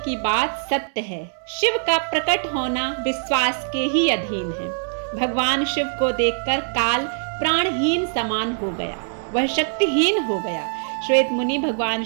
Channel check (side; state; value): left; silent; 63 dB below the other